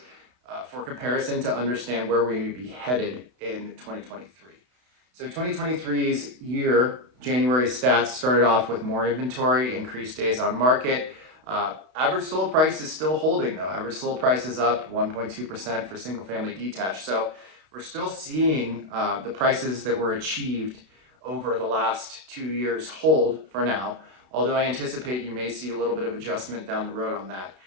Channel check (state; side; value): late; left; 32 ms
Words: for comparison to understand where we may be headed in 2023. So 2023's year, January stats started off with more inventory, increased days on market. Average sold price is still holding though. Average sold price is up 1.2% for single family detached. So we're still seeing the prices that were achieved over the last 2 years hold for now, although I anticipate you may see a little bit of adjustment down the road on that.